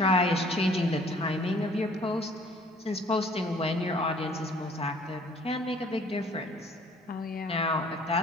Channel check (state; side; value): normal; both; correlation 0.55